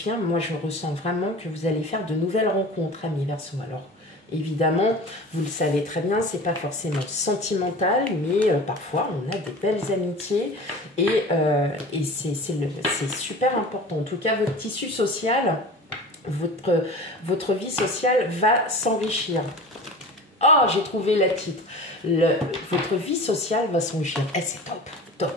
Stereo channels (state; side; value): normal; both; correlation 0.37